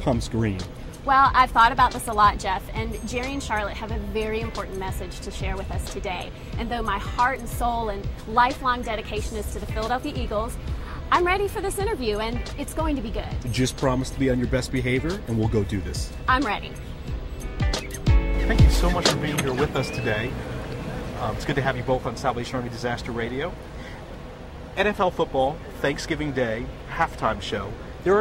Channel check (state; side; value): identical; both; correlation 1.00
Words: green. Well, I've thought about this a lot, Jeff, and Jerry and Charlotte have a very important message to share with us today. And though my heart and soul and lifelong dedication is to the Philadelphia Eagles, I'm ready for this interview, and it's going to be good. Just promise to be on your best behavior, and we'll go do this. I'm ready. Thank you so much for being here with us today. It's good to have you both on Salvation Army Disaster Radio. NFL football, Thanksgiving Day, halftime show. There